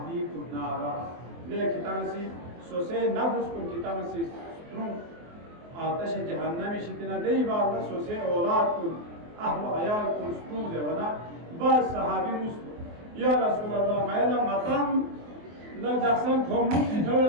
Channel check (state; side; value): late; left; 24 ms